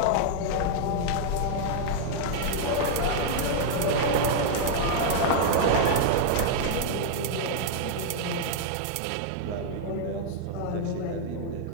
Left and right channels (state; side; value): different; both; correlation 0.00